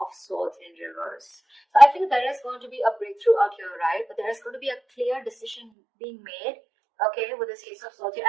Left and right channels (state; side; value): drops out; left; at 5.7 s